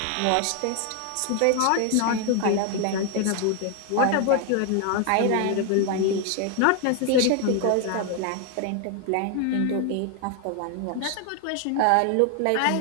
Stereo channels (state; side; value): different; both; correlation 0.00